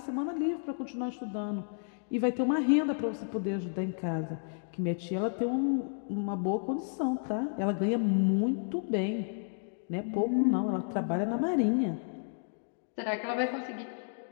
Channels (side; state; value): right; silent; digital silence